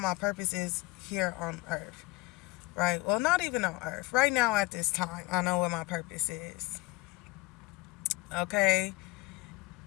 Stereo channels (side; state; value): right; quieter; 22.5 dB